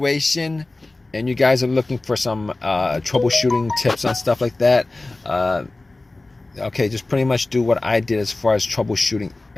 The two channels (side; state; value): right; quieter; 3.0 dB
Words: and you guys are looking for some troubleshooting tips on stuff like that, okay, just pretty much do what I did as far as troubleshooting